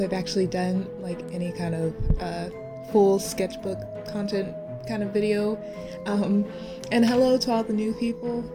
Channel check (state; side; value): identical; both; correlation 1.00